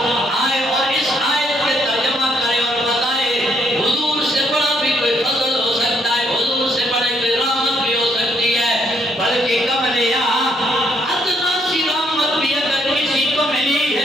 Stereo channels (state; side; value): normal; both; correlation 0.71